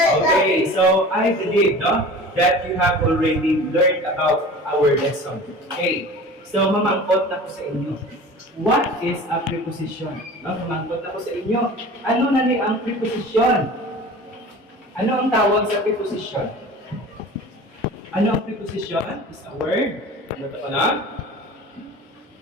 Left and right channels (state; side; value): normal; both; correlation 0.39